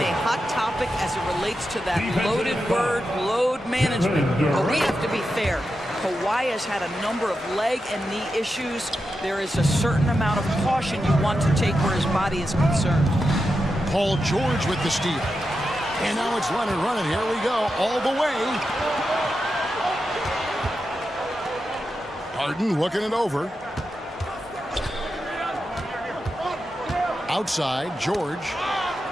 a hot topic as it relates to that loaded word, load management. But we have to be fair. Kawhi has had a number of leg and knee issues. There is a certain amount of caution you want to take where his body is concerned. Paul George with the steal. And now it's Leonard running. Here we go, all the way. Harden looking it over. Outside, George.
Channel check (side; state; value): both; normal; correlation 0.88